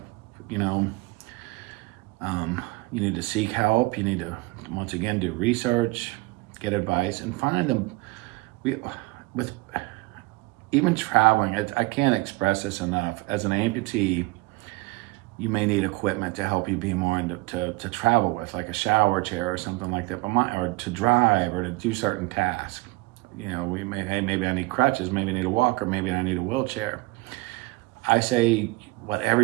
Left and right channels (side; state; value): left; quieter; 22.1 dB